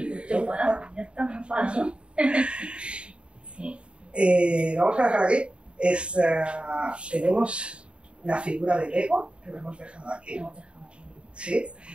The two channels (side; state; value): left; late; 0.056 ms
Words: te enfadas, ya está, me enfado, ¿no? Sí. Vamos a dejar aquí. Tenemos la figura del ego, que lo hemos dejado aquí. Sí.